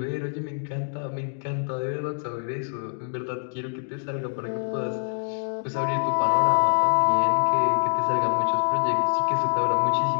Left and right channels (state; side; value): silent; right; digital silence